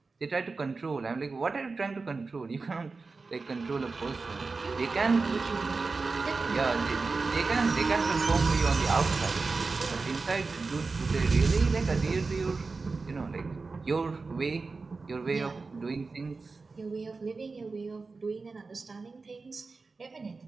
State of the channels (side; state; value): left; quieter; 4.1 dB